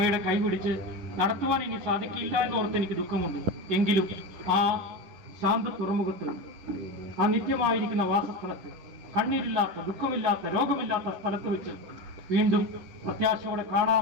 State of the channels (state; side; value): late; left; 10 ms